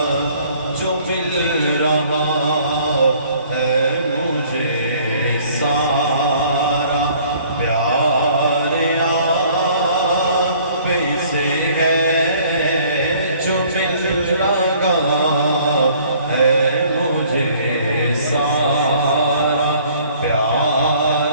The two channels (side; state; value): both; inverted; correlation -0.56